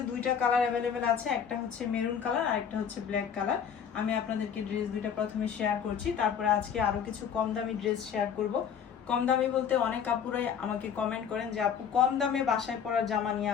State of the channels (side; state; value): right; quieter; 7.7 dB